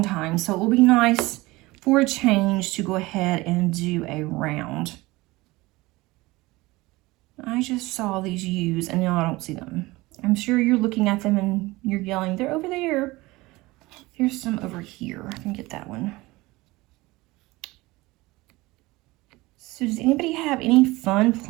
time, so it will be nice for a change to go ahead and do a round. I just saw these U's and now I don't see them. I'm sure you're looking at them and you're yelling, they're over there. Here's some over here. I can get that one. So does anybody have any fun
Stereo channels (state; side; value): quieter; left; 20.9 dB